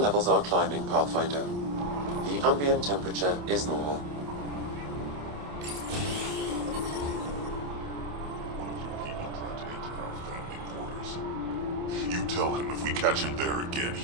are climbing, Pathfinder. The ambient temperature is normal. People tried to enter our family quarters. You tell him if we catch him there again,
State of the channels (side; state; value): left; late; 28 ms